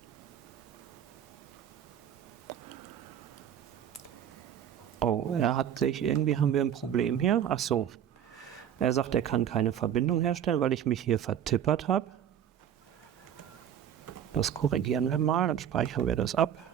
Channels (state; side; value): quieter; left; 9.7 dB